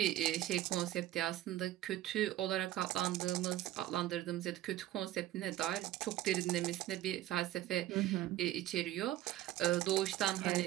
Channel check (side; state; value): left; quieter; 14.0 dB